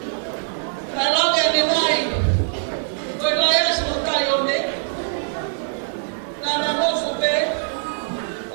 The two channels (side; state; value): left; silent; digital silence